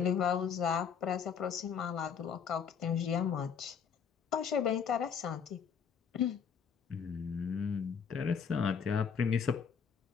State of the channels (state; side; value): quieter; right; 6.9 dB